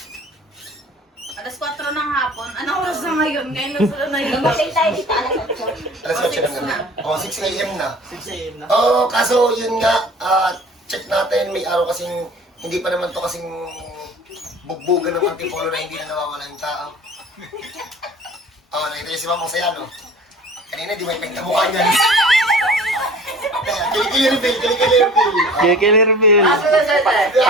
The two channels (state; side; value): normal; both; correlation 0.44